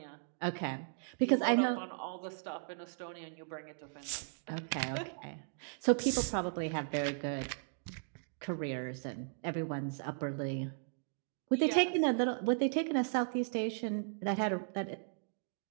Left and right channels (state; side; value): silent; left; digital silence